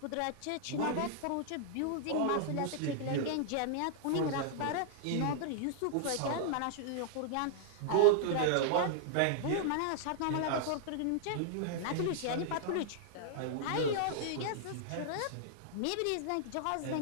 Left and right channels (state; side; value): different; both; correlation -0.01